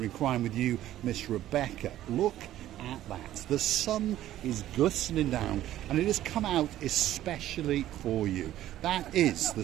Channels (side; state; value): left; quieter; 13.3 dB